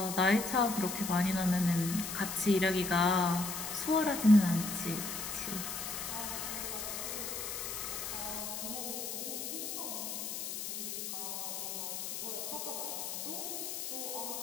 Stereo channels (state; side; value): noise; left; hiss, 5 dB below the sound